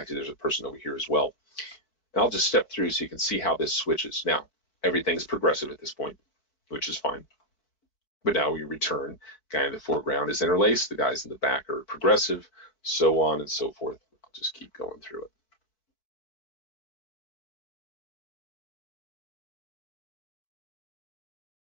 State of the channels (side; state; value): right; late; 4.6 ms